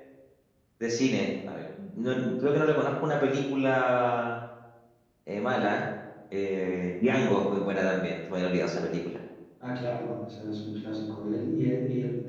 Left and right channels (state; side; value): identical; both; correlation 1.00